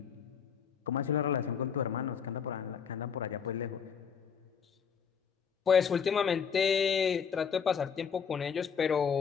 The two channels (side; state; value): right; quieter; 6.9 dB